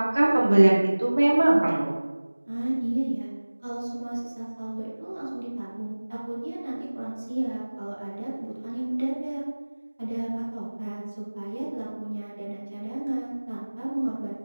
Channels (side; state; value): both; inverted; correlation -1.00